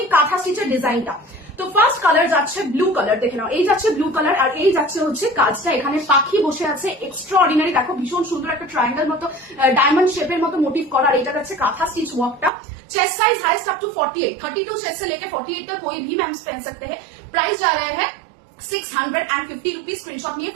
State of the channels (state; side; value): drops out; left; at 12.5 s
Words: কাঁথা স্টিচের ডিজাইনটা। তো ফার্স্ট কালার যাচ্ছে ব্লু কালার, দেখে নাও, এই যাচ্ছে ব্লু কালার, আর এই যাচ্ছে হচ্ছে কাজটা, এখানে পাখি বসে আছে, এক্সট্রা অর্ডিনারি। দেখো ভীষণ সুন্দর একটা ট্রায়াঙ্গেল মতো ডায়মন্ড শেপের মতো মোটিভ করা, আর এটা যাচ্ছে কাঁথা স্টিচ ওয়ার্কটা। Chest size highest up to 48, 32 chest से लेके 48 तक कोई भी मैम पहन सकते हैं। प्राइस जा रहा है 650 रुपीज। स्क्रीनशॉट নিয়ে